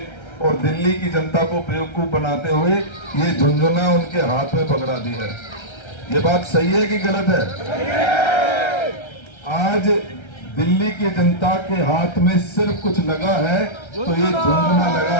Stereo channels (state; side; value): late; right; 1.3 ms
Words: और दिल्ली की जनता को बेवकूफ बनाते हुए ये झुंझुना उनके हाथ में पकड़ा दी है। ये बात सही है कि गलत है? आज दिल्ली की जनता के हाथ में सिर्फ कुछ लगा है तो ये झुंझुना लगा